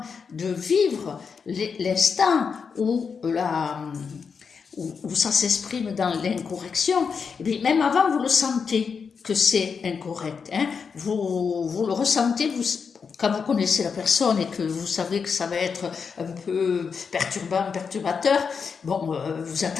de vivre l'instant où ça s'exprime dans l'incorrection, eh bien, même avant, vous le sentez que c'est incorrect. Hein. Vous le ressentez, quand vous connaissez la personne et que vous savez que ça va être un peu perturbateur, bon, vous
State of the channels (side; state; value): right; quieter; 5.9 dB